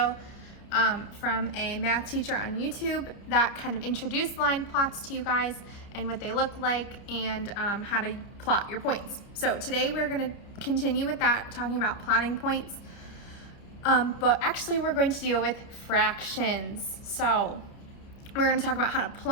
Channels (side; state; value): right; late; 30 ms